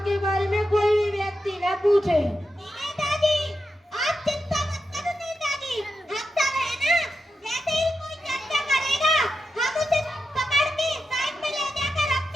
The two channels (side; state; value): both; normal; correlation 0.88